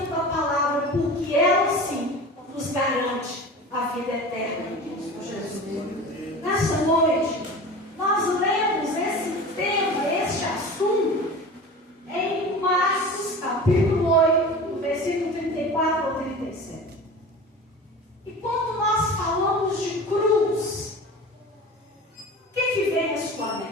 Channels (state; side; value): normal; both; correlation 0.35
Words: da palavra, porque ela sim nos garante a vida eterna em Cristo Jesus. Nessa noite, nós lemos esse tema, este assunto, em Marcos, capítulo 8, do versículo 34 ao 37. E quando nós falamos de cruz, o que vem à sua